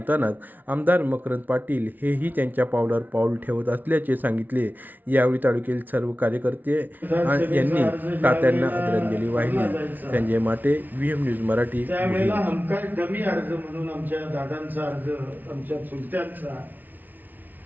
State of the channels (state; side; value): late; left; 0.083 ms